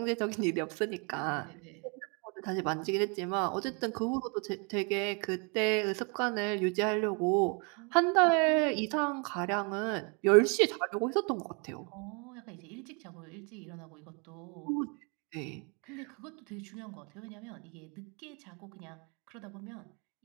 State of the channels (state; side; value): quieter; left; 34.1 dB